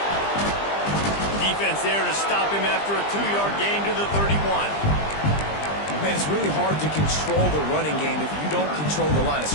Defense there to stop him after a 2-yard gain to the 31. Man, it's really hard to control the running game if you don't control the line of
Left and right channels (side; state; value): right; late; 20 ms